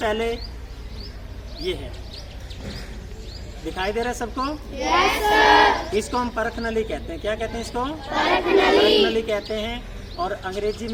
ये है, दिखाई दे रहा है सबको? Yes sir. इसको हम परख नली कहते हैं। क्या कहते हैं इसको? परख नली कहते हैं। और अंग्रेजी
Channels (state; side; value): identical; both; correlation 1.00